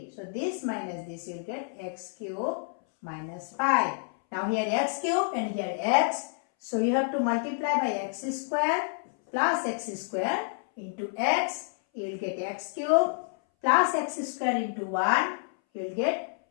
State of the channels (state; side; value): silent; right; 59 dB below the other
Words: So this minus this, you will get x cube minus 5. Now here x cube and here x. So you have to multiply by x square plus x square into x. You will get x cube plus x square into 1. You will get